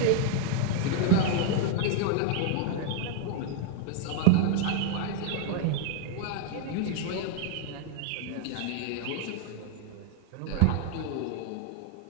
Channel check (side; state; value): both; different; correlation 0.00